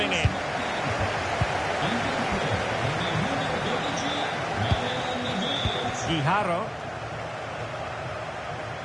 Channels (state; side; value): identical; both; correlation 1.00